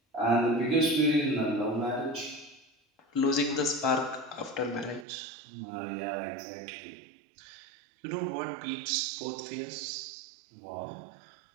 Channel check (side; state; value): left; drops out; at 5.1 s